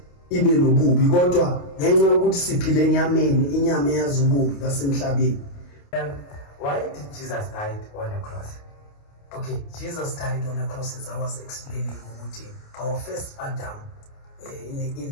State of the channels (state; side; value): late; right; 28 ms